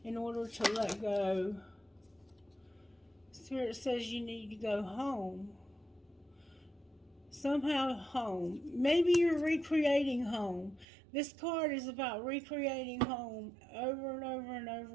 in order to let go? Spirit says you need to go home. Somehow home. Maybe you're recreating home. This card is about recreating home over and over and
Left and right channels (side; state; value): left; drops out; at 10.9 s